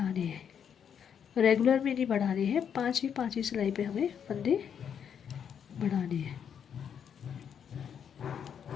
हैं, रेगुलर में नहीं बढ़ाने हैं। 5वीं सिलाई पे हमें फंदे बढ़ाने हैं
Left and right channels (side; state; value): right; quieter; 8.0 dB